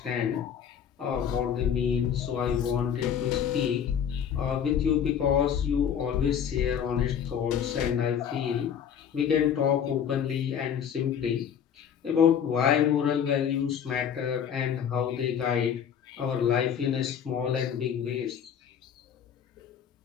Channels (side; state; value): right; quieter; 8.3 dB